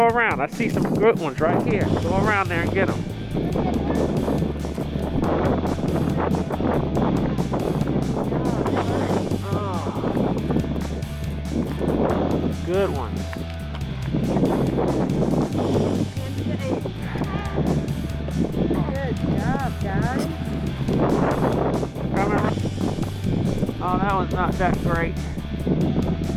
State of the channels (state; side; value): identical; both; correlation 1.00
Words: around. I see some good ones right here. Go around there and get them. Good ones. Good job, guys. Oh, that one's not that great.